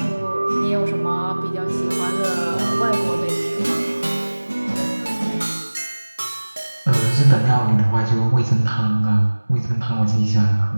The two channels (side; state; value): both; inverted; correlation -1.00